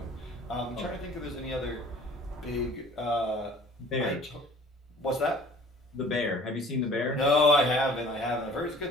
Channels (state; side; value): normal; both; correlation 0.50